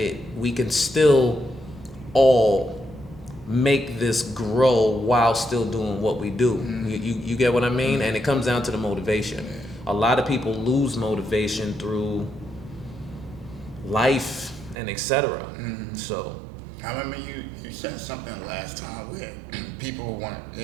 we can still all make this grow while still doing what we do. You get what I mean? And it comes down to the motivation. A lot of people lose motivation through life and etc. So I remember you said something last time where people want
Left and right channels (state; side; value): drops out; left; at 14.8 s